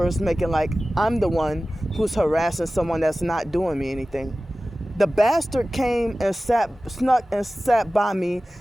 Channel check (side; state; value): both; normal; correlation 0.96